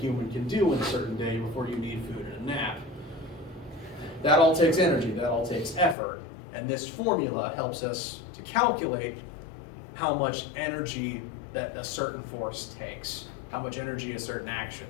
can do in a certain day before you need food and a nap. That all takes energy, that all takes effort. And this formula helps us to calculate how much energy that a certain force takes, how much energy a certain action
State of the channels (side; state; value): right; drops out; at 6.0 s